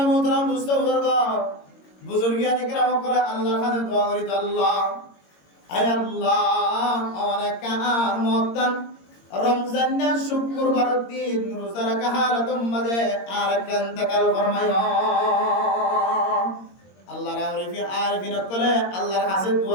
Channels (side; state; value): right; late; 22 ms